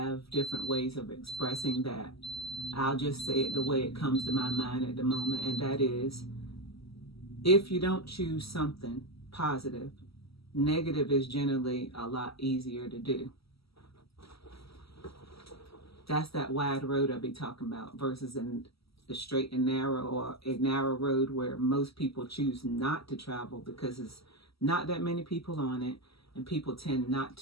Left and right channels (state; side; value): late; right; 0.76 ms